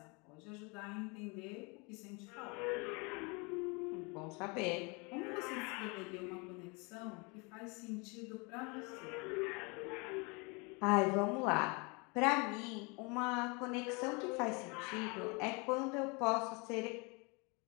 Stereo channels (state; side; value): quieter; right; 30.1 dB